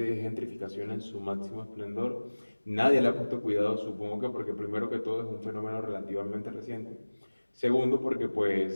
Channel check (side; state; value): both; inverted; correlation -1.00